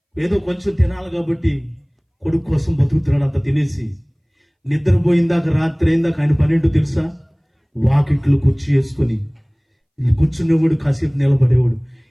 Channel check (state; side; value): identical; both; correlation 1.00